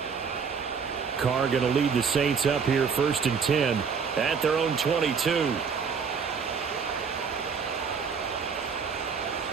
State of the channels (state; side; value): quieter; left; 6.0 dB